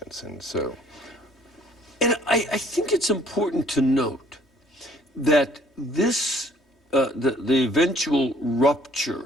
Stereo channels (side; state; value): both; normal; correlation 0.59